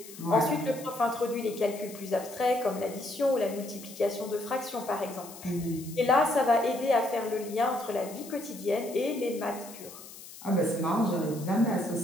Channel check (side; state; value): left; noise; hiss, 16 dB below the sound